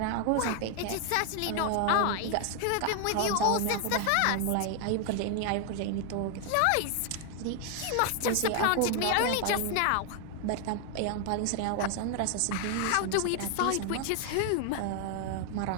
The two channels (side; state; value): both; different; correlation 0.00